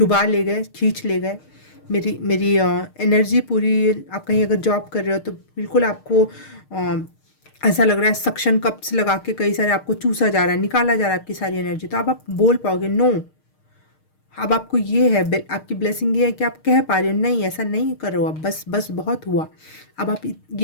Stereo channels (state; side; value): late; right; 6.5 ms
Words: ले गए, खींच ले गए मेरी एनर्जी पूरी। आप कहीं अगर जॉब कर रहे हो तो बिल्कुल आपको ऐसा लग रहा है सक्शन कप्स लगा के कई सारे आपको चूसा जा रहा है, निकाला जा रहा है आपकी सारी एनर्जी। तो अब आप बोल पाओगे नो, अब आपको ये है, आपकी ब्लेसिंग ये है कि आप कह पा रहे हो नहीं ऐसा नहीं करो, अब बस बस बहुत हुआ। अब आप